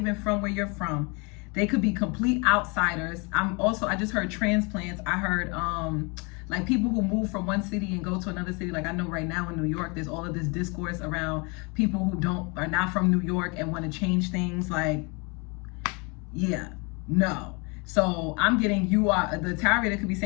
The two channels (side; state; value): right; quieter; 30.6 dB